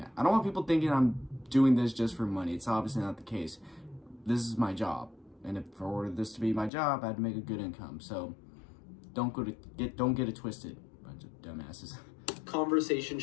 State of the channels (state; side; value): drops out; right; at 6.7 s